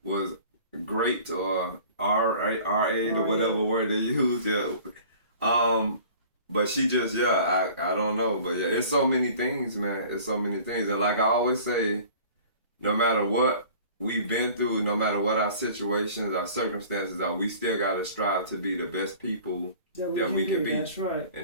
was great or R8 or whatever word they use. Yeah. But she just, I don't know. But yeah, it's so many things, man. It's so many things. And like I always say, no matter what we've been through, no matter what our situations, our circumstances are, we still got to strive to be the best people that we can be. That's right.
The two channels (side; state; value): both; inverted; correlation -0.46